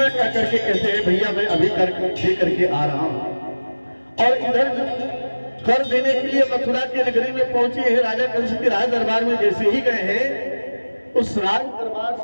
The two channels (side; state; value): both; inverted; correlation -1.00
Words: क्या करके कहते हैं भैया मैं अभी कर दे करके आ रहा हूं। और इधर कर देने के लिए मथुरा की नगरी में पहुंचे हैं। राजा कंस के राज दरबार में जैसे ही गए हैं उस राज दरबार